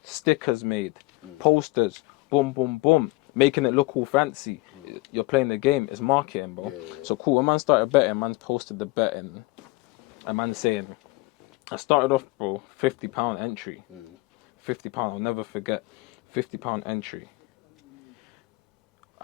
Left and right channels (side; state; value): right; quieter; 23.2 dB